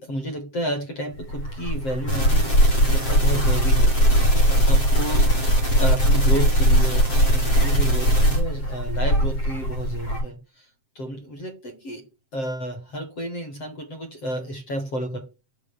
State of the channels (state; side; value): late; right; 7.6 ms